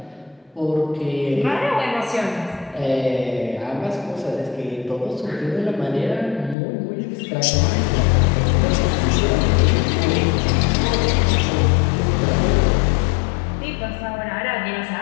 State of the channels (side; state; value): right; drops out; at 6.6 s